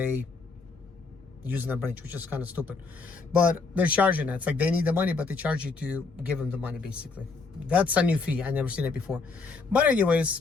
using the branch, which is kind of stupid, but they're charging it. It's like they need the money, but they charge you to give them the money, basically. That's a new fee. I never seen it before. But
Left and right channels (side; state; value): right; quieter; 4.3 dB